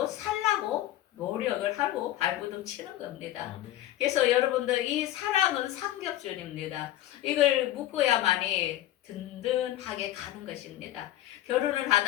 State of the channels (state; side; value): quieter; right; 14.0 dB